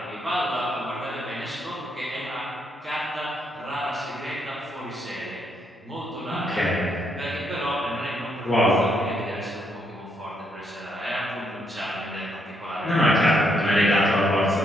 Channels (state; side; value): normal; both; correlation 0.75